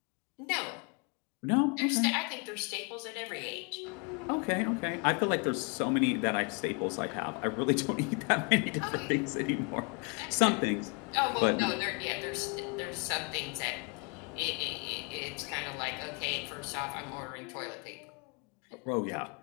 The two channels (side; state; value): right; quieter; 34.2 dB